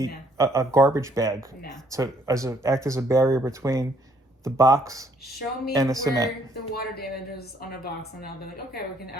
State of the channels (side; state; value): both; normal; correlation 0.66